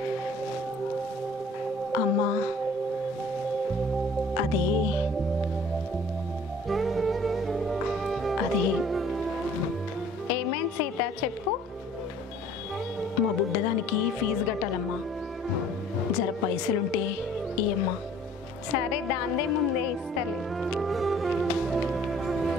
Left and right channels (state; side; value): normal; both; correlation 0.53